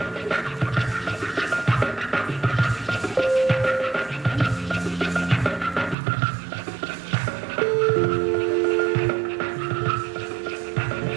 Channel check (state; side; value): drops out; left; at 6.0 s